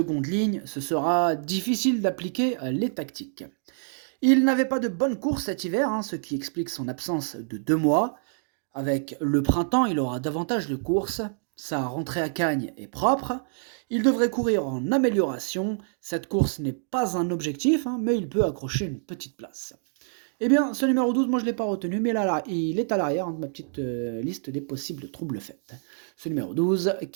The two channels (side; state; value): left; silent; digital silence